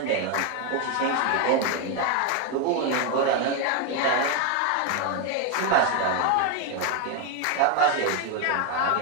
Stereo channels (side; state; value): both; different; correlation 0.02